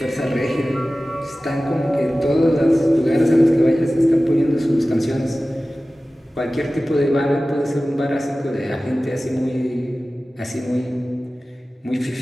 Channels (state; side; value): normal; both; correlation 0.96